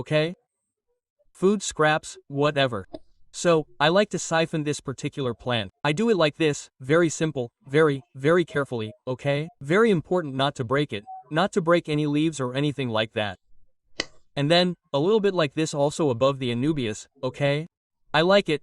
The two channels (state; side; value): identical; both; correlation 1.00